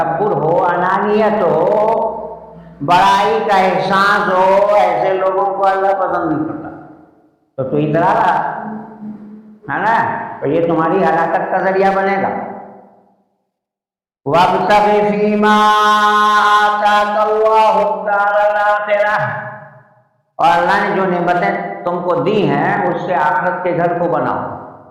ہو، انانیت ہو، بڑائی کا احساس ہو، ایسے لوگوں کو اللہ پسند نہیں کرتا۔ تو اترا رہا ہے نا، تو یہ تمہاری ہلاکت کا ذریعہ بنے گا۔ وَابْتَغِ فِيمَا آتَاكَ اللَّهُ الدَّارَ الْآخِرَةَ، اور اللہ نے جو نعمتیں تم کو دی ہیں اس سے آخرت کے گھر کو بناؤ۔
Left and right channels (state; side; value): identical; both; correlation 1.00